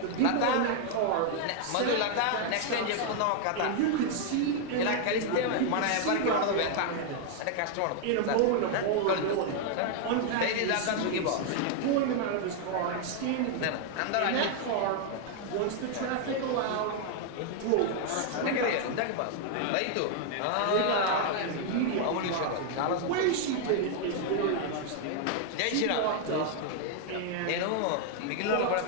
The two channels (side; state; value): both; different; correlation 0.00